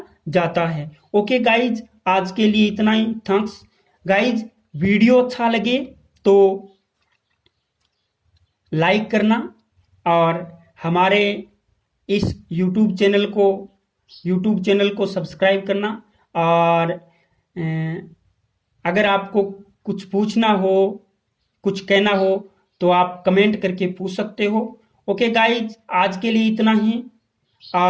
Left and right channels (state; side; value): identical; both; correlation 1.00